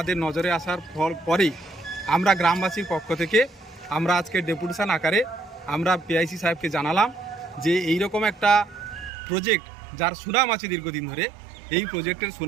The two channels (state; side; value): drops out; left; at 9.1 s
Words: নজরে আসার পরেই আমরা গ্রামবাসীর পক্ষ থেকে আমরা আজকে ডেপুটেশন আকারে আমরা পিআইসি সাহেবকে জানালাম যে এই রকম একটা প্রজেক্ট যার সুনাম আছে দীর্ঘদিন ধরে, এই প্রজেক্টের